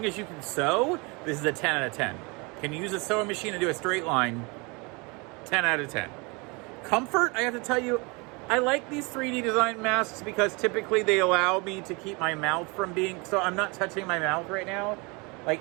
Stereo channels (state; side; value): quieter; left; 28.7 dB